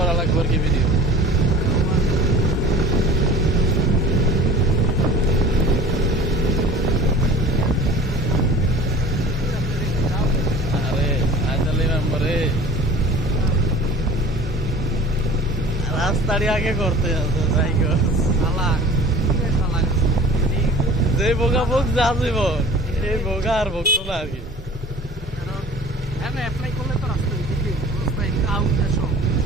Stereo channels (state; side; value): normal; both; correlation 0.43